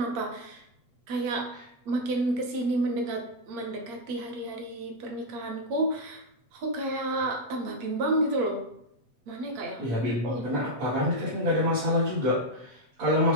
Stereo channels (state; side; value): late; left; 8.5 ms